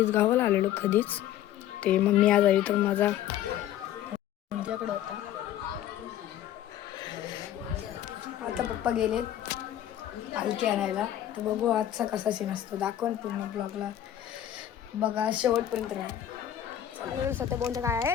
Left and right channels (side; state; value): right; quieter; 11.6 dB